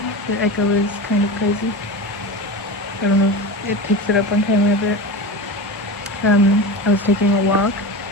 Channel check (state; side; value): normal; both; correlation 0.26